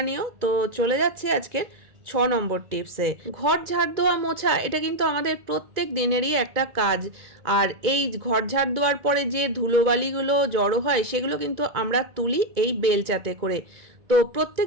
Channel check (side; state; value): left; late; 2.1 ms